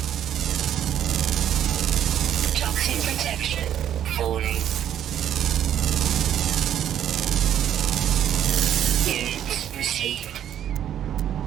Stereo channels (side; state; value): left; quieter; 10.5 dB